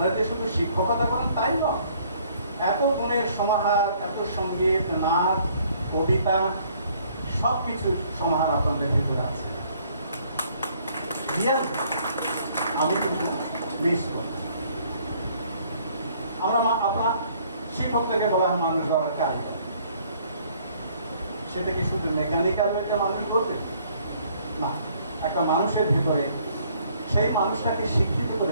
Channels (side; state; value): both; inverted; correlation -0.62